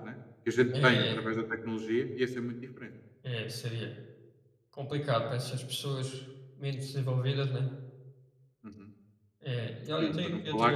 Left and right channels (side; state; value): both; identical; correlation 1.00